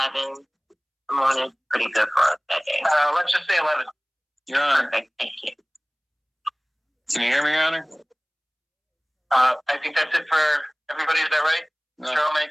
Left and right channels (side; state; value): both; identical; correlation 1.00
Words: the morning? Pretty good for us that day. Let's just say 11. Your Honor. Perfect. Thank you. Can you hear me, Your Honor? I think that's it for everybody. Is that right? No. Cheryl,